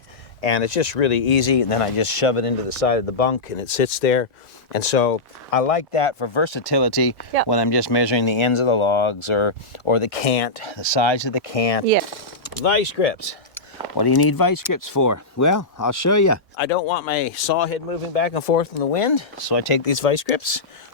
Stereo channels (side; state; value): right; quieter; 3.1 dB